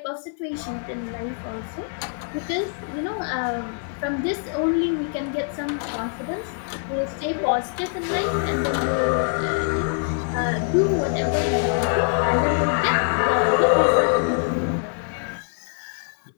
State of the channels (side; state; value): right; silent; 61 dB below the other